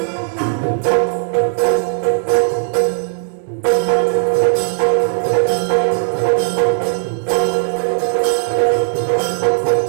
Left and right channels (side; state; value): left; silent; 68 dB below the other